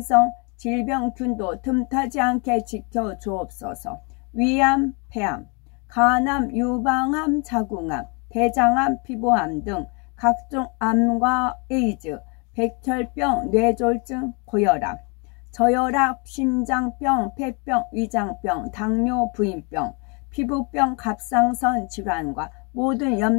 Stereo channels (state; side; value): quieter; right; 33.1 dB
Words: 질병균도 틈타지 않게 지켜 주옵소서. 위암, 폐암, 간암, 유방암, 자궁암, 대장암, 피부암 등 각종 암과 에이즈, 백혈병, 뇌졸중, 고혈압, 저혈압, 심장병, 폐병, 위장병, 당뇨, 부인병, 피부병, 갑상선 질환과 모든